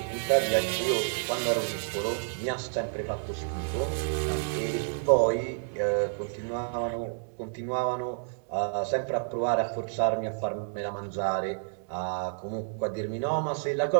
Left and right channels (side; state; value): left; silent; 58 dB below the other